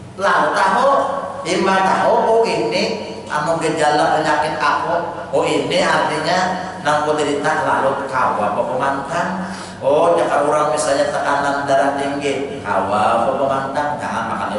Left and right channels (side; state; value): both; identical; correlation 1.00